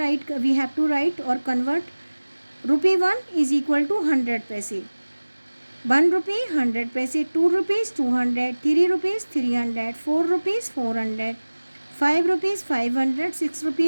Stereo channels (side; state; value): both; inverted; correlation -1.00